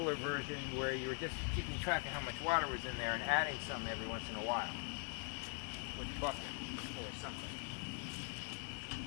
version where you were just keeping track of how much water was in there and adding some every once in a while with a bucket or something.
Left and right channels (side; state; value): right; quieter; 38.8 dB